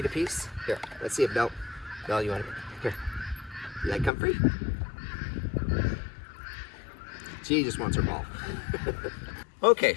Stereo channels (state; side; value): drops out; right; at 4.1 s